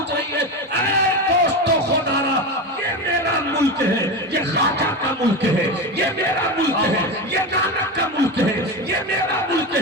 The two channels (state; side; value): normal; both; correlation 0.20